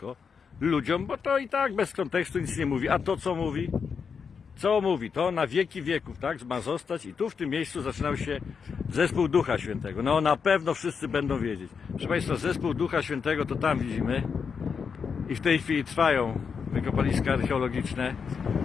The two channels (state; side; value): quieter; right; 6.1 dB